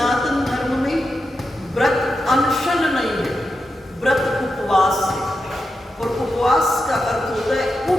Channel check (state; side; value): normal; both; correlation 0.88